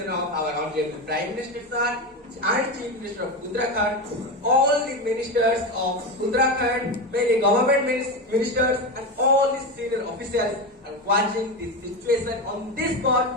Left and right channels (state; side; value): normal; both; correlation 0.18